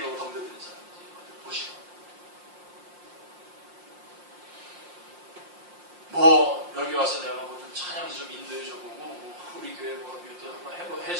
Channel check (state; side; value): late; left; 5.7 ms